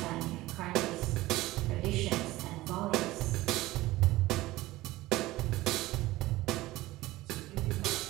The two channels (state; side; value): quieter; left; 18.0 dB